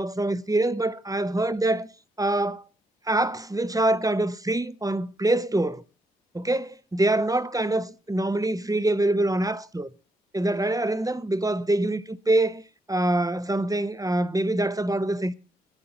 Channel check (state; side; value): normal; both; correlation 0.77